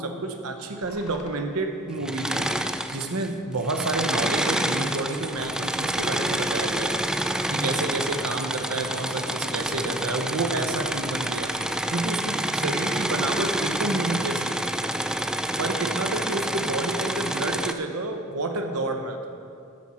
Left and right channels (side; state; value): both; normal; correlation 0.46